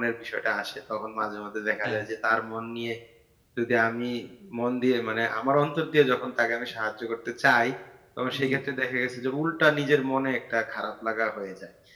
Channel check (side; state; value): both; identical; correlation 1.00